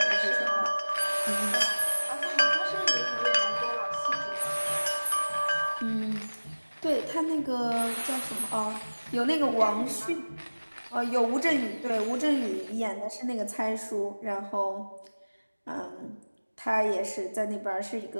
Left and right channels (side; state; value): both; inverted; correlation -1.00